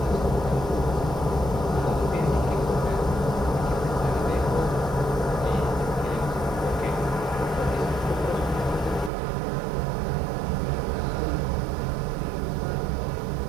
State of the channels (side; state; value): left; drops out; at 9.1 s